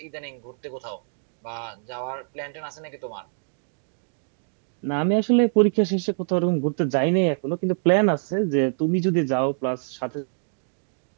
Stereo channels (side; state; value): left; silent; digital silence